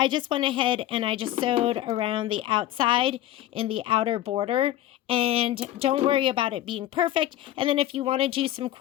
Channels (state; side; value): quieter; right; 13.3 dB